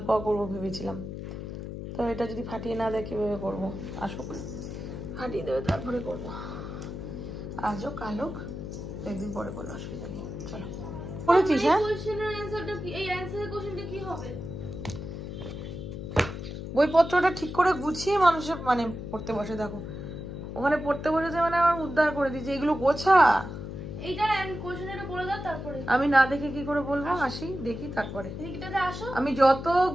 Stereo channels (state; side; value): noise; left; hum, 8 dB below the sound